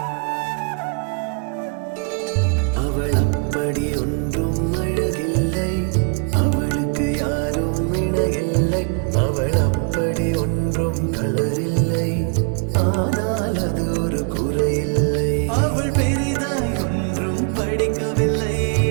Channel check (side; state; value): left; quieter; 36.7 dB